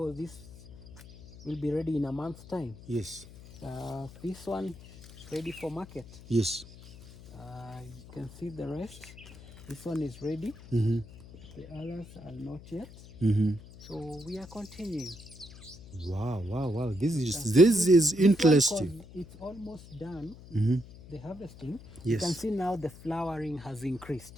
this will be ready in a month's time. Yes. This one ready for market. Yes. You can see the rest. This one is ready. The others are not yet. So we are continuing. Wow. This is interesting. It's almost done. The harvesting. Yes. You can see now the flowering has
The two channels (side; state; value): left; noise; hum, 18 dB below the sound